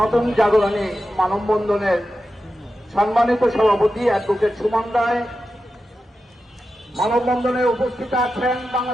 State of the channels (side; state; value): both; normal; correlation 0.91